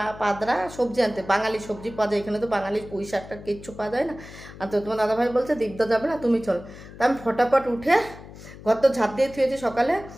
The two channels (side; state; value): left; noise; hum, 16 dB below the sound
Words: পাদরা সবজি আনতে, বাঙালি সবজি পাওয়া যায় এখানে, তো বাঙালি পুঁই শাকটা কিচ্ছু পাওয়া যায় না। আর তো তোমার দাদাভাই বলছে দীপদা যাবে না, তুমি চল। তা আমি ফটাফট উঠে ঘর তো ঝাঁপ দিয়ে থুয়েছি সকালে।